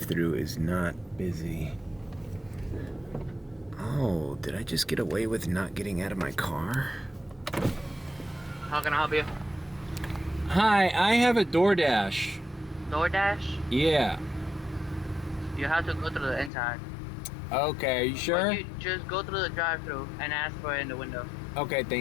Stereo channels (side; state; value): right; drops out; at 16.5 s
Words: is not busy. Oh, did I just get away with not getting out of my car? How can I help you? Hi, I have a DoorDash. DoorDash? Yeah. You have to go through the inside. Okay, are you sure? Or you just go through the drive-thru and ask for it in the window. Okay,